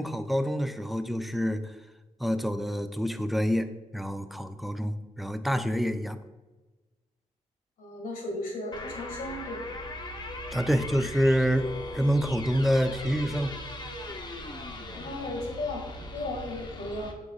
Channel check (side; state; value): both; normal; correlation 0.90